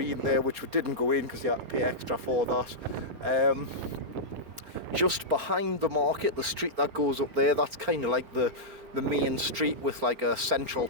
there, which we didn't go in because you had to pay extra for that. Just behind the market, the street that goes up there, that's kind of like the main street with like a central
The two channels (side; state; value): left; late; 4.4 ms